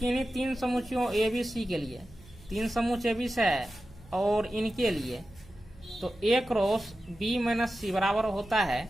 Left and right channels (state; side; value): noise; right; hum, 23 dB below the sound